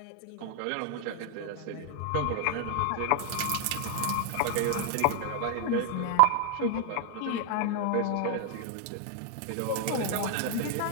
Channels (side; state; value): both; different; correlation 0.00